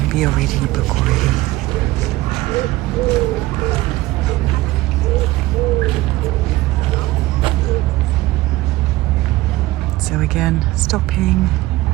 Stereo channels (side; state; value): left; quieter; 18.2 dB